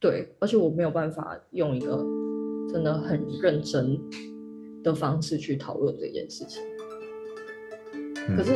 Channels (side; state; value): both; identical; correlation 1.00